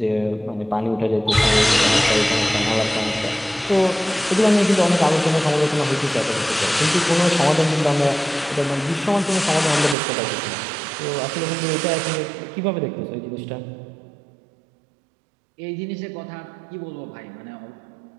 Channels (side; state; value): left; drops out; at 10.0 s